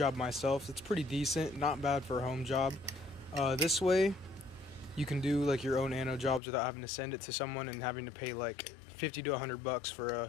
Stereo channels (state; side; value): drops out; right; at 6.4 s